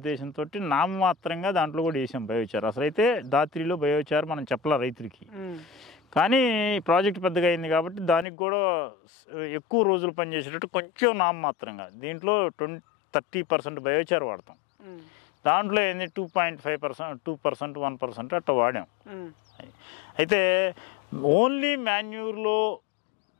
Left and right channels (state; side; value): drops out; right; at 8.2 s